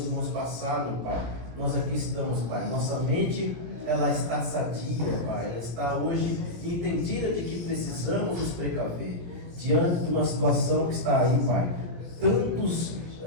irmãos passaram, Pai. Nós aqui estamos, Pai, nossa mente, ela está sadia, Pai, ela está hoje entendida de que precisamos nos precaver diante de uma situação que está aí, Pai. Tantas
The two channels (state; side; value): late; left; 17 ms